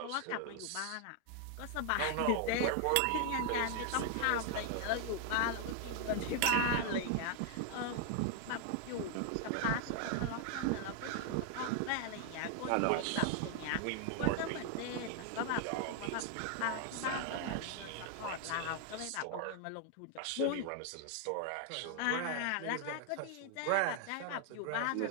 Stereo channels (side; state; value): both; different; correlation 0.00